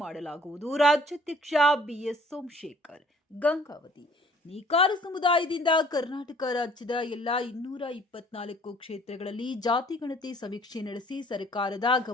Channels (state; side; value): normal; both; correlation 0.56